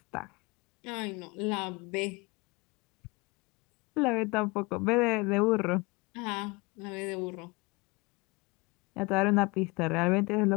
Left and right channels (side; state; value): right; quieter; 25.6 dB